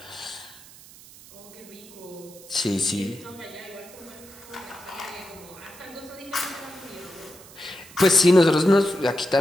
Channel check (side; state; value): right; noise; hiss, 20 dB below the sound